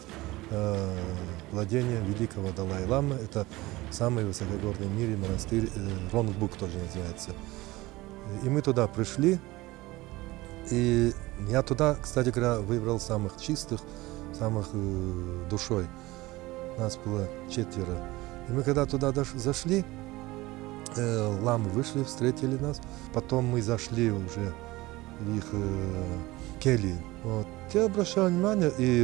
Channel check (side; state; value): left; quieter; 19.9 dB